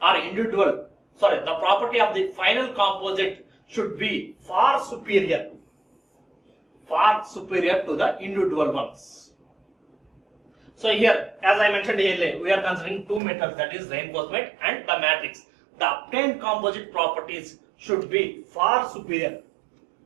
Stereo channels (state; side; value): drops out; left; at 13.2 s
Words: are the property of the final composite should be far superior to the individual ones. So here, as I mentioned earlier, we are considering two metals, that is reinforcement and the matrix. The obtained composite properties should be far superior.